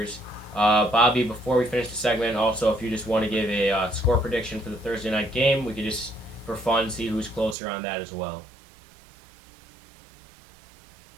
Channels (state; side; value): drops out; left; at 7.6 s